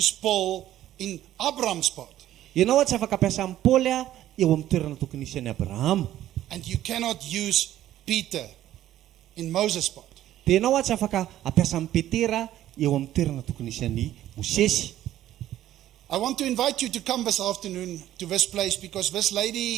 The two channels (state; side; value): quieter; left; 13.0 dB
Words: Paul in Abraham's part. Ianao tsy afaka ampiasa amin'ny Paoly eo amin'ny toerana tokony isy an'i Abraham. And you cannot use Peter in Moses' part. Dia ianao tsy afaka ampiasa amin'ny Petera eo amin'ny toerana tokony isy an'i Mosesy. I want to invite you to come this afternoon to this place because this